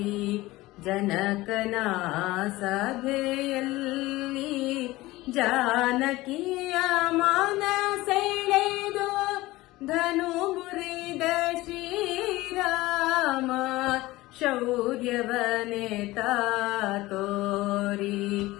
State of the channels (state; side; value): quieter; right; 18.9 dB